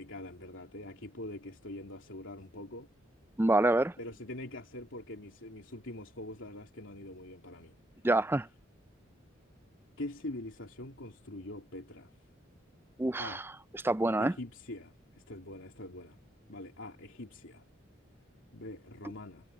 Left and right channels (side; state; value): both; normal; correlation 0.75